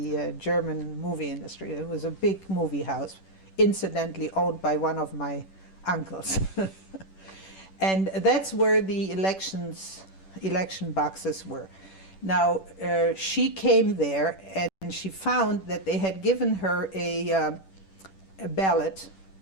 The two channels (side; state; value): right; late; 10 ms